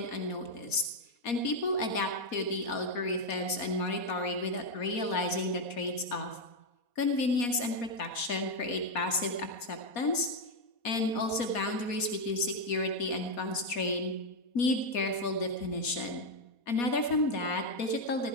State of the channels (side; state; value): right; late; 4.2 ms